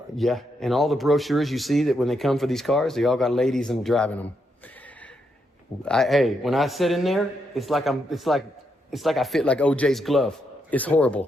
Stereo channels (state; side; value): normal; both; correlation 0.80